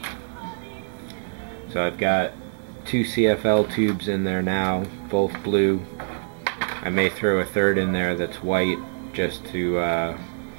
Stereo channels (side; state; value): left; silent; 60 dB below the other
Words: So I've got 2 CFL tubes in there now, both blue. I may throw a third in there that's white just to